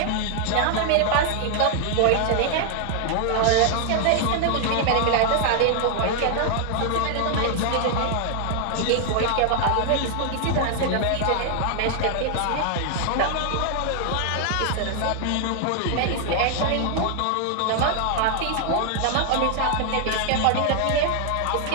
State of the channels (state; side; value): different; both; correlation 0.00